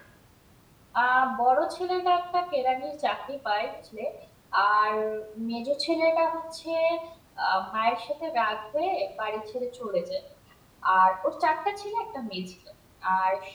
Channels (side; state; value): both; identical; correlation 1.00